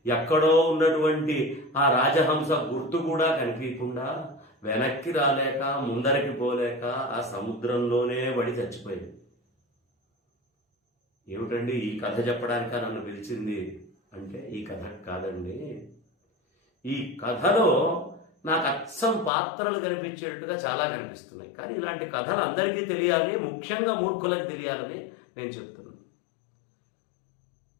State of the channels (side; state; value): right; drops out; at 19.3 s